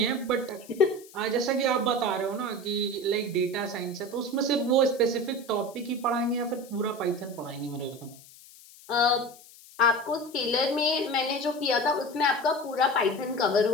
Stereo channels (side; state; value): left; noise; hiss, 21 dB below the sound